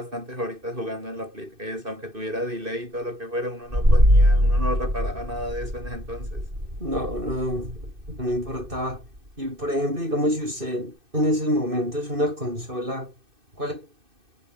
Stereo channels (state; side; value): late; left; 2.6 ms